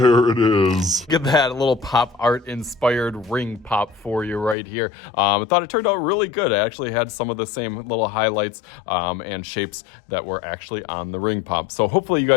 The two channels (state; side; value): drops out; right; at 4.5 s